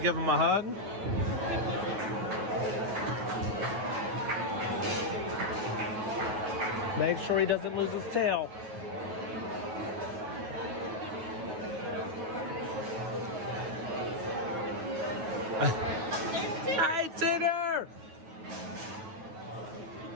give him a hug? Make sure he doesn't lose his tail. Hi, Tigger!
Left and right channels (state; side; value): late; left; 9.3 ms